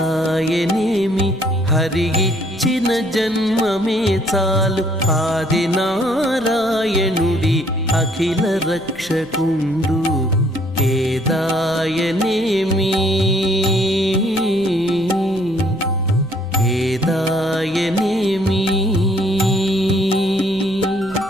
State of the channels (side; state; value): left; noise; rumble, 24 dB below the sound